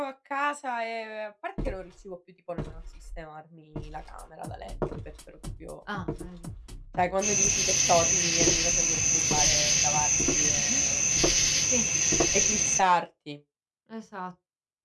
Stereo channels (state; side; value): identical; both; correlation 1.00